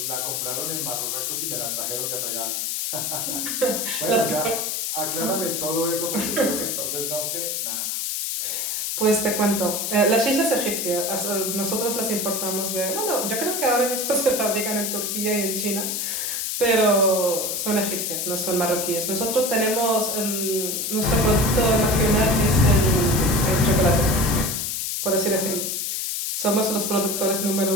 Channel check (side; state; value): left; noise; hiss, 1 dB below the sound